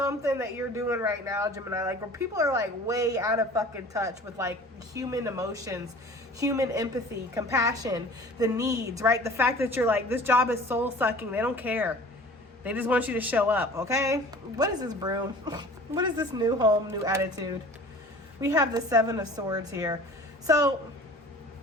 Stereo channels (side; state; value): both; normal; correlation 0.44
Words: that you're doing right now, Gemini. Like, where people are like way out of fucking touch with like human emotions, human empathy, compassion, the needs, right? The fact that you're like, this job is soul sucking. They don't care. They just want you to show up, okay? What is this broom? What is this new home, new attitude? We have the Seven of Swords here. So